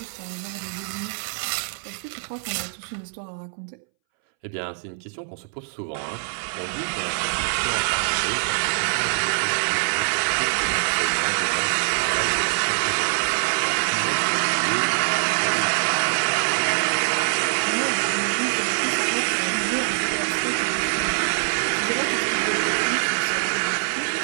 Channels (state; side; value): silent; left; 63 dB below the other